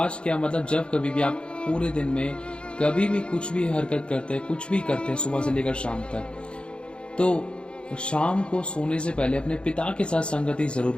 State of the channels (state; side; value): late; right; 0.055 ms